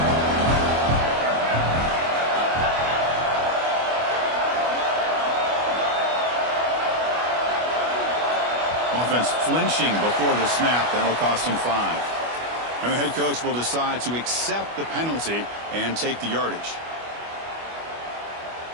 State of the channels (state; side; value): late; left; 25 ms